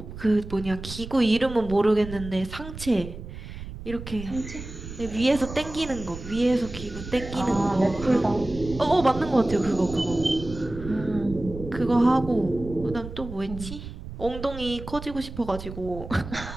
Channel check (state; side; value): noise; right; rumble, 11 dB below the sound